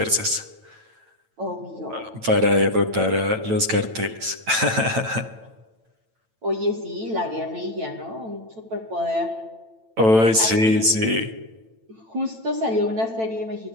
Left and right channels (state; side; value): late; left; 9.0 ms